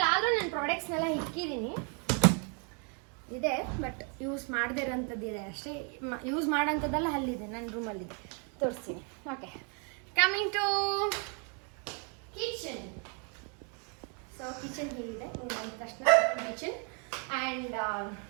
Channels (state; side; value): quieter; left; 38.2 dB